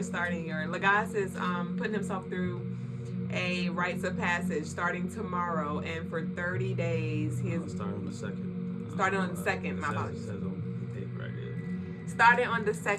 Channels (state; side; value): identical; both; correlation 1.00